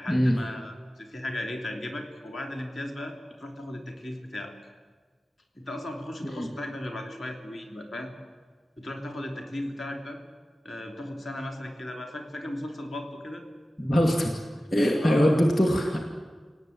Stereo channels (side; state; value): both; normal; correlation 0.95